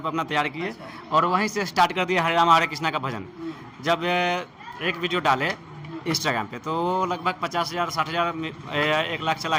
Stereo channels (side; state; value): both; identical; correlation 1.00